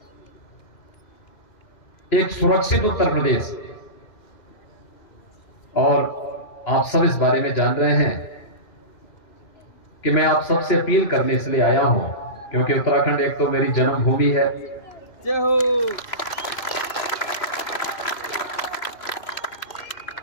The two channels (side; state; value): right; late; 3.0 ms